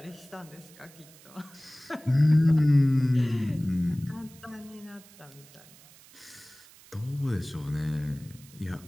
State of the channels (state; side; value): noise; right; hiss, 23 dB below the sound